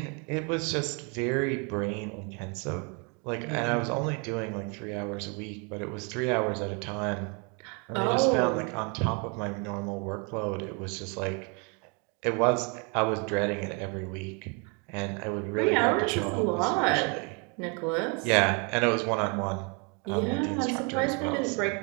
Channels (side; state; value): left; quieter; 34.1 dB